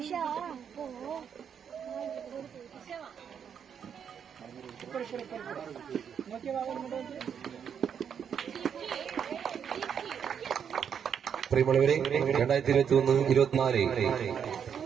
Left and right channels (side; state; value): left; quieter; 7.8 dB